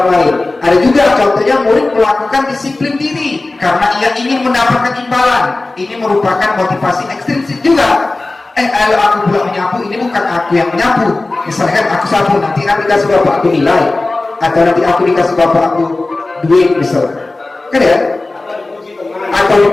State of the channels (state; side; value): quieter; right; 3.1 dB